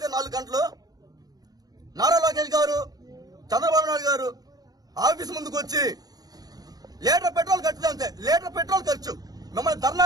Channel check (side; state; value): left; late; 0.19 ms